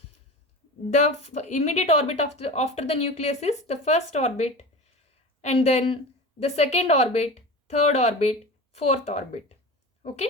The immediate orbit after the nucleus is the first orbit, and then the second orbit, third orbit, fourth orbit.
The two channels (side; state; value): both; normal; correlation 0.31